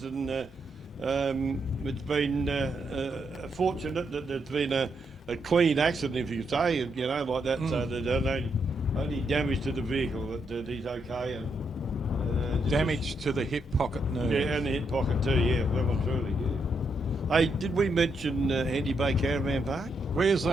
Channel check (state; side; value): normal; both; correlation 0.79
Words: and it's been fortunate that there's been a clean accident, if you say, you know, like that, so there's only damage to the vehicle, that he's okay. And, Damage to the hip pocket nerve. yeah, and the hip pocket too, yeah, well and truly, yeah. Hey, did we mention Handy Bay Caravan Park? Where's